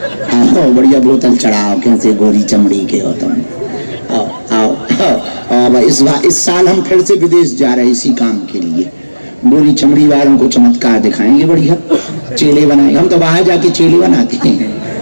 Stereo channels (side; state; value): both; inverted; correlation -1.00